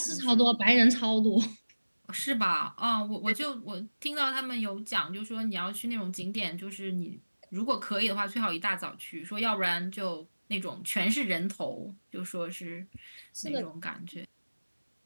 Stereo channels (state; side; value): inverted; both; correlation -1.00